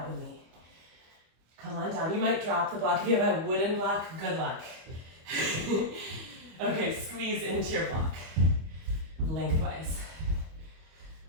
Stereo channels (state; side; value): late; left; 25 ms